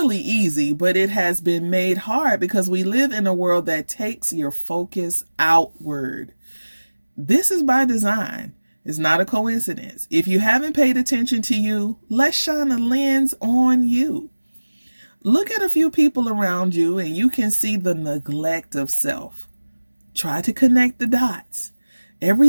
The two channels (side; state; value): both; inverted; correlation -1.00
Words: easy, but it has been made hard because we live in a world that takes your focus outward. This is by design. It's not a coincidence. If you haven't paid attention to you, let's shine a lens on you. Look at a few people around you and you can see the neglect of self. Try to connect the dots.